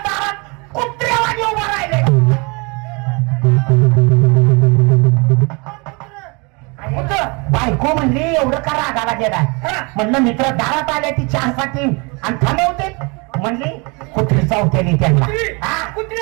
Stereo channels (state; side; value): quieter; left; 29.6 dB